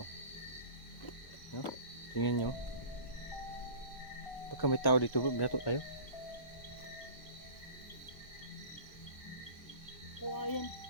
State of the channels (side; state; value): right; late; 1.3 ms